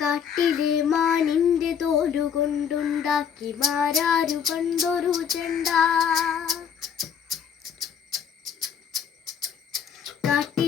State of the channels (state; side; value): quieter; right; 7.6 dB